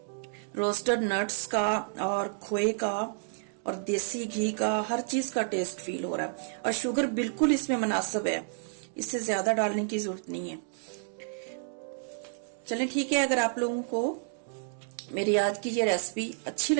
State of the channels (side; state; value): left; silent; digital silence